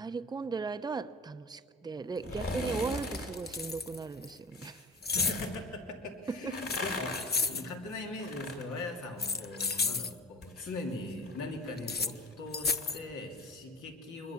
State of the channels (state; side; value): normal; both; correlation 0.40